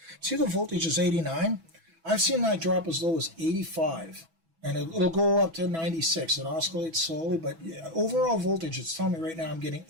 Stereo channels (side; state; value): left; late; 6.1 ms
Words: See, the voltage is 89. I've seen that drop as low as 85. And it'll go up to 96. It oscillates slowly, but yeah, overall voltage, it's telling me right now I'm getting